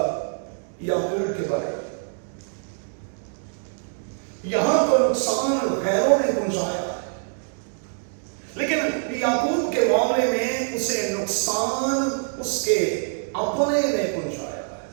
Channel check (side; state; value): left; silent; digital silence